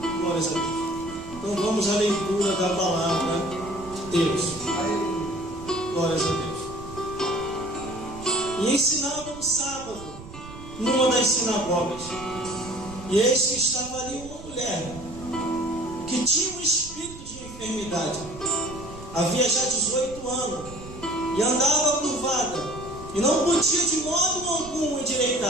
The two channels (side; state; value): right; noise; rumble, 15 dB below the sound